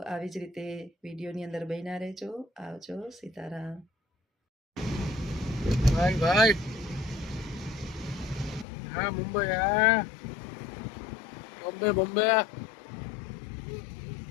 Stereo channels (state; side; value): drops out; right; at 8.7 s